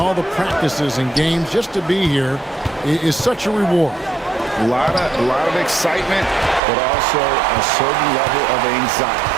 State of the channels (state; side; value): drops out; left; at 6.6 s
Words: the practices and games, just to be here is such a reward. A lot of excitement, but also a certain level of anxiety.